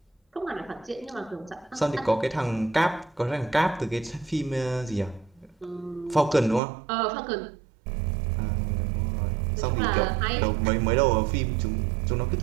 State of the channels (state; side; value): drops out; left; at 6.6 s